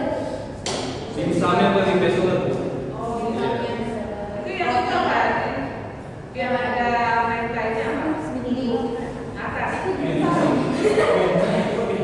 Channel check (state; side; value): identical; both; correlation 1.00